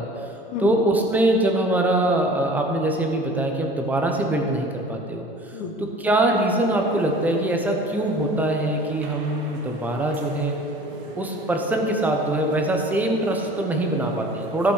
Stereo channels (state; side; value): normal; both; correlation 0.46